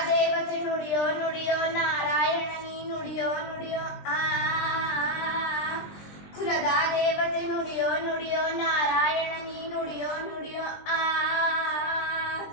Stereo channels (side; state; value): right; late; 20 ms